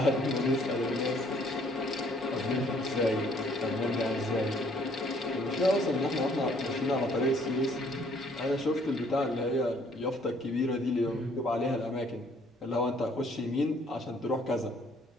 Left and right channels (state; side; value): normal; both; correlation 0.62